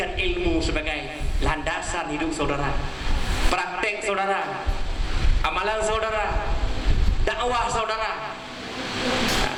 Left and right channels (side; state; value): both; identical; correlation 1.00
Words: ilmu sebagai landasan hidup saudara, praktek saudara, amalan saudara, dakwah saudara.